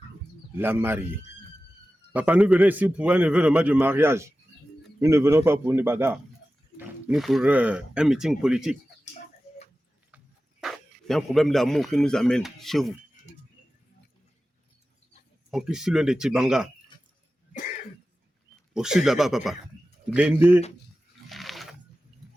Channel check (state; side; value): normal; both; correlation 0.94